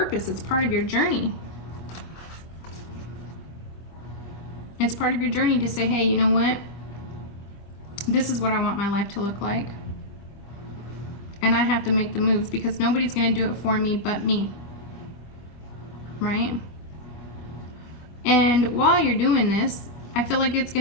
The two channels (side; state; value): right; late; 25 ms